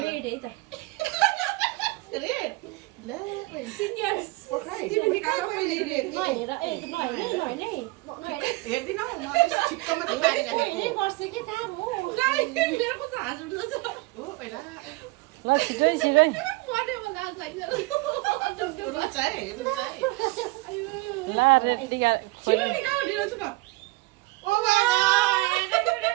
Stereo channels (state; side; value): quieter; left; 22.6 dB